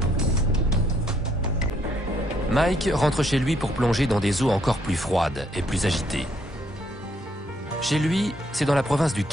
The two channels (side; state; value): both; normal; correlation 0.70